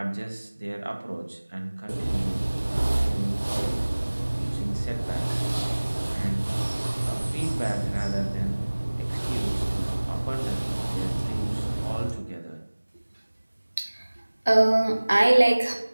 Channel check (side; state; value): both; inverted; correlation -1.00